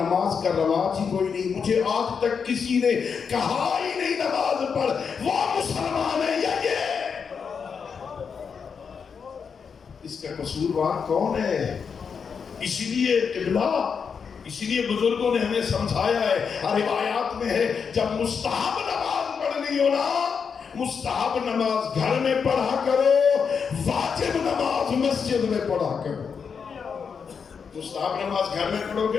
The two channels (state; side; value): quieter; right; 6.2 dB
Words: کا رواج ہی کوئی نہیں۔ مجھے آج تک کسی نے کہا ہی نہیں نماز پڑھ، وہ مسلمان ہے یا یہ؟ اس کا قصوروار کون ہے؟ اسی لیے قبلہ، اسی لیے بزرگوں نے ہمیں سمجھایا ہے، روایات میں ہے جب مستحب نماز پڑھنی ہو نا، مستحب نماز گھر میں پڑھا کرو، واجب نماز مسجد میں پڑھا کرو۔ مستحب نماز گھر میں پڑھو